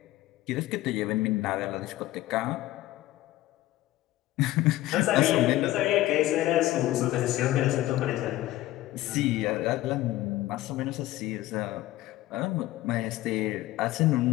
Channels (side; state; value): right; quieter; 16.0 dB